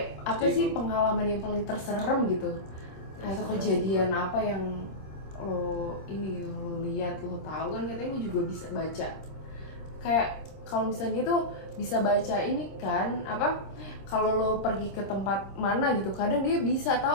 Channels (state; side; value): late; right; 26 ms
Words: apa sih pengalaman yang paling terserem gitu? Atau kejadian apa yang lo ini gitu, lo lihat, lo tahu kan katanya lu juga bisa baca. Kayak kalau misalnya tuh bisa baca ini kan, apa? Kalau lo pergi ke tempat mana gitu, kadang dia bisa